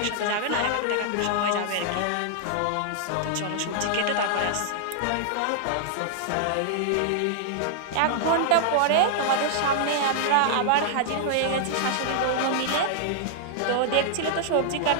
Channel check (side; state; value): both; different; correlation -0.01